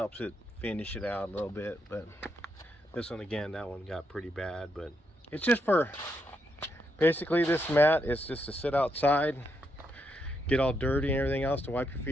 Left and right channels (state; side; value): normal; both; correlation 0.80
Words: it finish it out a little bit, but this one again, that one got pretty bad, but it's just for, basically this mat is just to sit outside, get all dirty and everything else, to wipe your